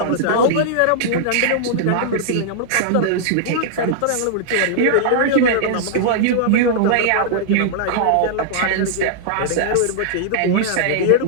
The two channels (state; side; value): different; both; correlation -0.01